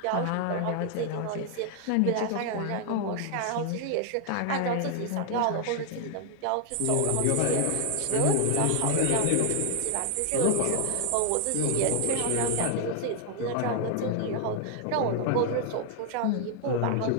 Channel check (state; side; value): different; both; correlation 0.00